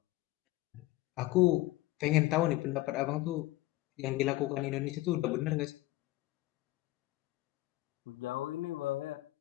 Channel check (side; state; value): right; quieter; 17.9 dB